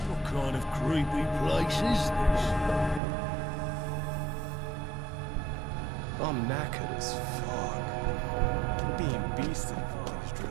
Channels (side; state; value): left; drops out; at 3.0 s